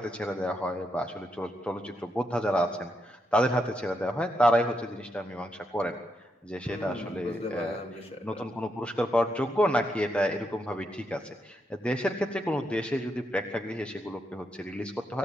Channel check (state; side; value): normal; both; correlation 0.81